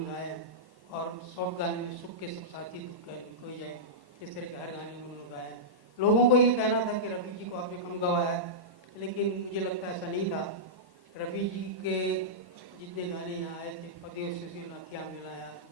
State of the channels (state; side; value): late; left; 1.1 ms